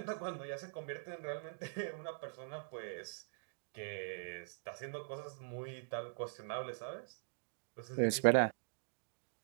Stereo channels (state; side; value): silent; left; digital silence